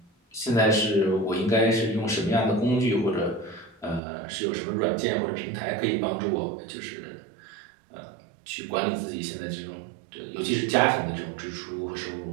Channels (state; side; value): drops out; left; at 4.0 s